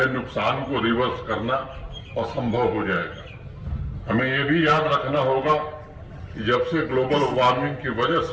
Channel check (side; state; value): both; identical; correlation 1.00